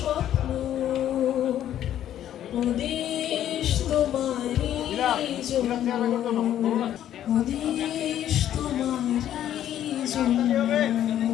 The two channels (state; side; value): quieter; right; 11.3 dB